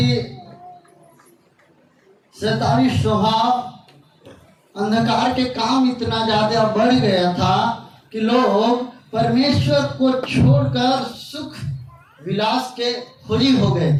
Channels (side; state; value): both; identical; correlation 1.00